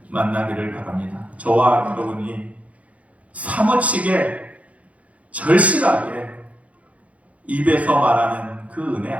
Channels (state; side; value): late; left; 0.066 ms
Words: 만나기를 바랍니다. 저와 여러분이 사무치게 절실하게 입에서 말하는 그 은혜